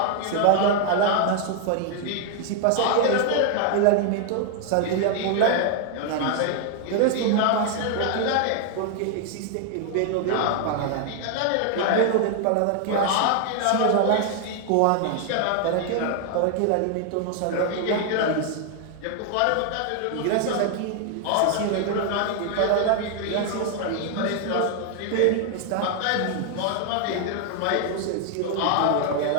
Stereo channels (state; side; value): different; both; correlation 0.00